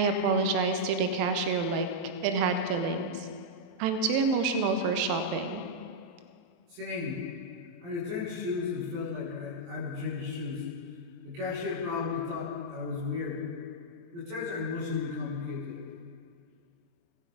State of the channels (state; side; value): late; left; 23 ms